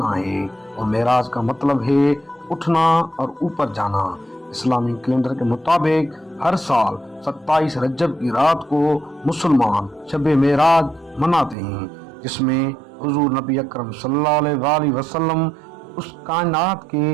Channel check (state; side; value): drops out; left; at 11.6 s